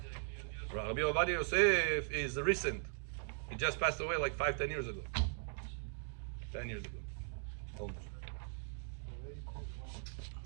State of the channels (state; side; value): silent; left; 51 dB below the other